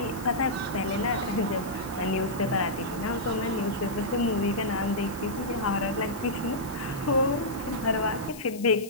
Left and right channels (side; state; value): left; noise; hiss, 16 dB below the sound